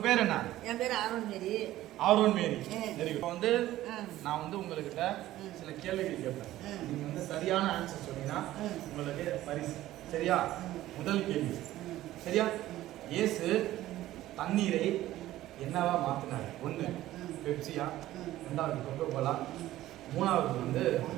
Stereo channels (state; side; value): quieter; left; 14.9 dB